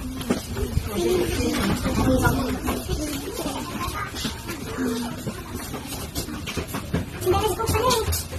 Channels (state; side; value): identical; both; correlation 1.00